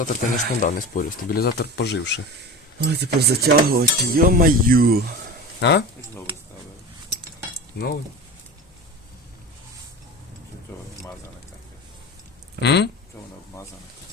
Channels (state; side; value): normal; both; correlation 0.31